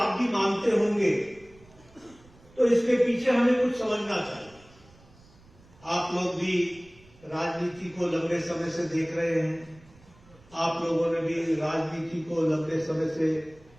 भी मानते होंगे तो इसके पीछे हमें कुछ समझना चाहिए। आप लोग भी राजनीति को लंबे समय से देख रहे हैं, आप लोगों ने भी राजनीति को लंबे समय से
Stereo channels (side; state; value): right; noise; rumble, 26 dB below the sound